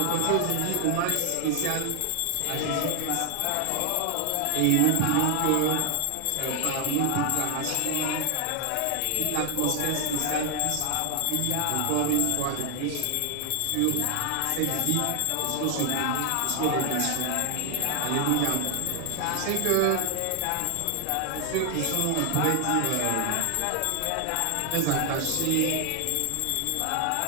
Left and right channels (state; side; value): different; both; correlation 0.00